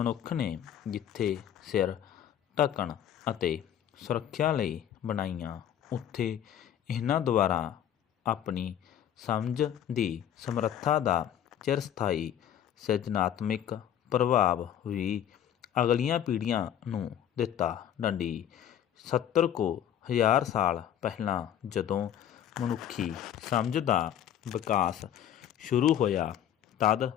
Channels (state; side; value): quieter; right; 10.2 dB